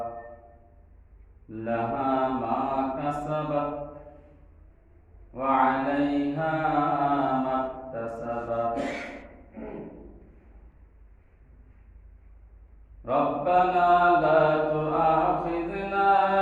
لها ما كسبت وعليها ما اكتسبت. ربنا لا تؤاخذنا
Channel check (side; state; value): both; identical; correlation 1.00